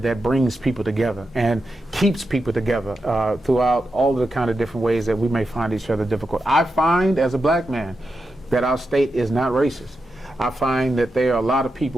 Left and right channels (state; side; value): normal; both; correlation 0.88